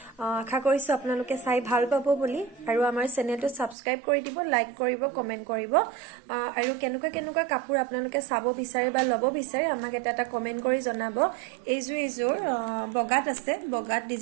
আশা কৰিছো আপোনালোকে চাই ভাল পাব বুলি আৰু আমাৰ চেনেলটো সাবস্ক্ৰাইব কৰি দিব লাইক কৰিব কমেন্ট কৰিব আৰু কেনেকুৱা কাপোৰ আপোনালোকে চাব বিচাৰে বা লব বিচাৰে আমাক এটা কমেন্ট কৰি জনাব এইযোৰ বগাত আছে বগাত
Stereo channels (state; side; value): drops out; left; at 3.8 s